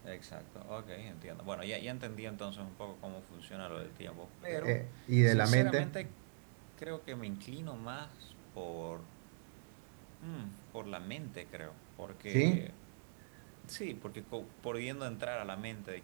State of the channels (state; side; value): silent; left; digital silence